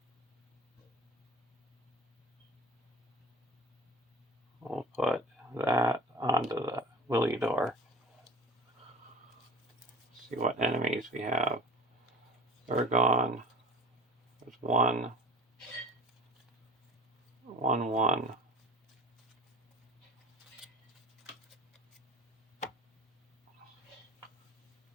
We'll put that onto the LOTR. See what enemies we have. Urgon. There's 1. 1, 1.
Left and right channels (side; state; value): both; normal; correlation 0.39